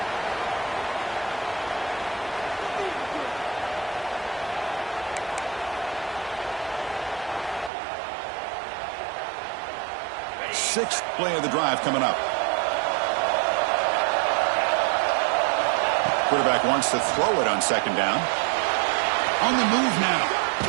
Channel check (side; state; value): left; drops out; at 7.7 s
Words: Sixth play of the drive coming up. Quarterback wants to throw it on second down. On the move now.